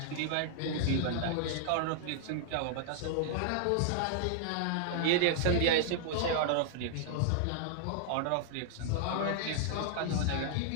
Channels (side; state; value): both; different; correlation -0.01